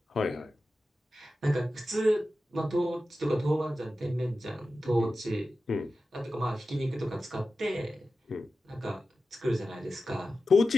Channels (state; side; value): normal; both; correlation 0.93